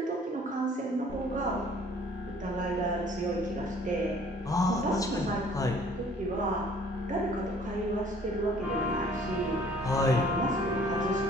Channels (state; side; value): normal; both; correlation 0.55